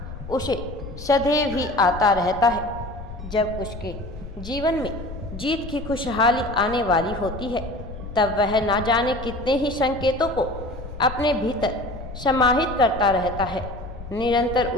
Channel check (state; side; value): noise; left; rumble, 11 dB below the sound